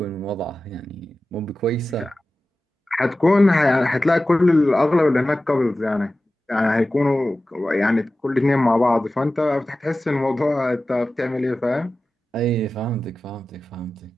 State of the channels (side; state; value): both; normal; correlation 0.95